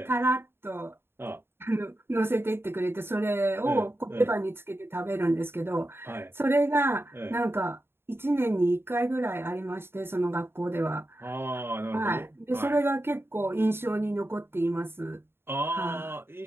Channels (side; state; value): left; late; 0.11 ms